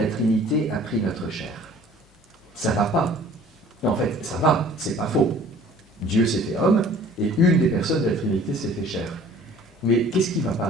Trinité a pris notre chair. Ça va pas. Non, en fait, ça va, c'est pas faux. Dieu s'est fait homme et une des personnes de la Trinité s'est fait chair. Mais qu'est-ce qui ne va pas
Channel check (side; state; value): both; normal; correlation 0.51